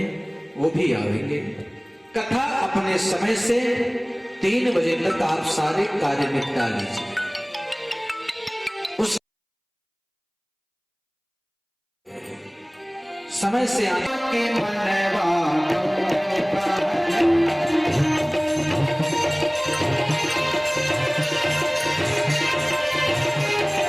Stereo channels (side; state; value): both; identical; correlation 1.00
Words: वो भी आएंगे। कथा अपने समय से 3 बजे तक आप सारे कार्य निपटा लीजिए। उस समय से आके